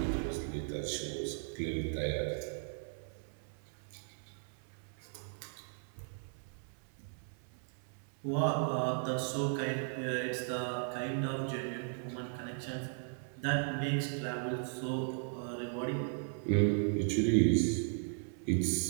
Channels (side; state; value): left; silent; 53 dB below the other